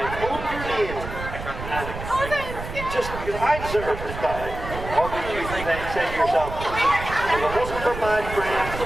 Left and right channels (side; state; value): right; noise; rumble, 9 dB below the sound